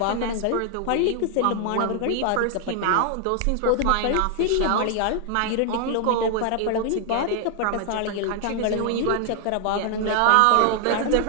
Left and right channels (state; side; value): different; both; correlation 0.00